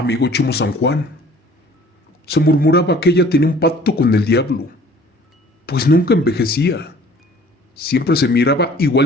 Chimo San Juan, se murmuraba que ella tenía un pacto con el diablo, pues nunca envejecía. Siempre se miraba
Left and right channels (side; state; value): both; normal; correlation 0.52